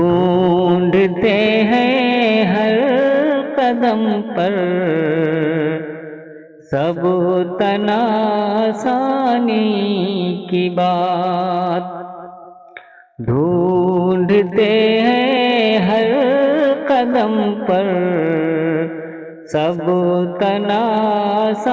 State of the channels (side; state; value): both; identical; correlation 1.00